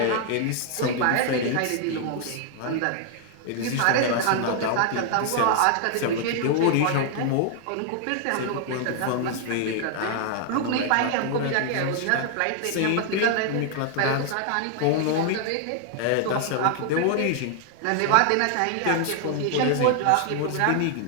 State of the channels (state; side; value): different; both; correlation 0.00